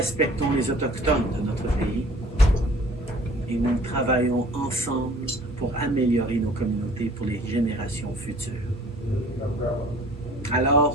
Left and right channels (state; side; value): normal; both; correlation 0.50